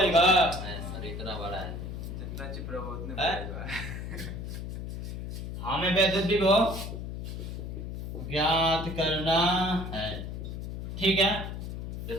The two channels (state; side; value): noise; left; hum, 6 dB below the sound